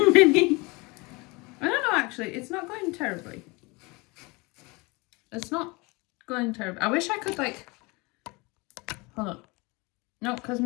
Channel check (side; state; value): right; quieter; 25.9 dB